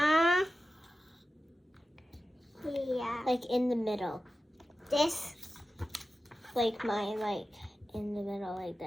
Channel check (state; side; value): normal; both; correlation 0.93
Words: Like in the middle. This. Like mine, like in the middle like